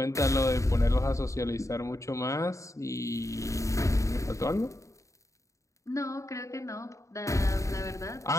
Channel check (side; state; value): right; late; 0.15 ms